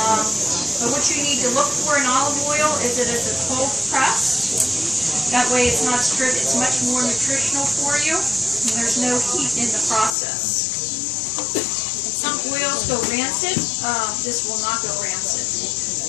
But what you need to look for in olive oil is that it's a cold press. That way it's not stripped. It's much more nutritional for you. And there's no heat in the process. Some oils go rancid. This will not go rancid.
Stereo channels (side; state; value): right; drops out; at 10.2 s